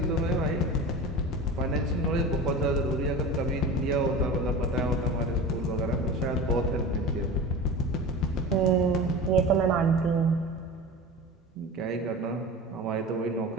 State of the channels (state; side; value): normal; both; correlation 0.32